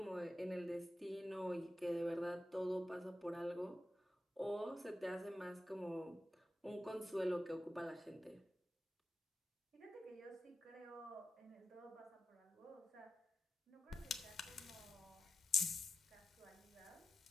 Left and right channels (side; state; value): both; normal; correlation 0.90